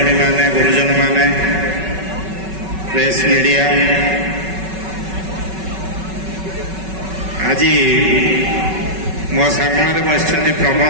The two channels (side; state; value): left; late; 5.3 ms